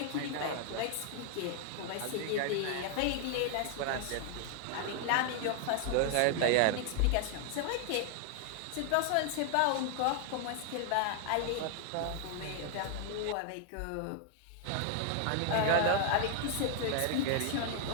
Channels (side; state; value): both; different; correlation 0.00